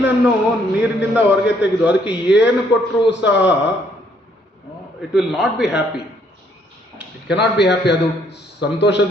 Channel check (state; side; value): normal; both; correlation 0.68